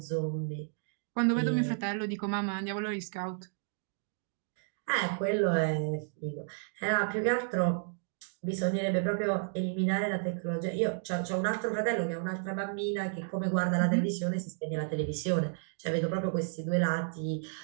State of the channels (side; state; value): left; silent; digital silence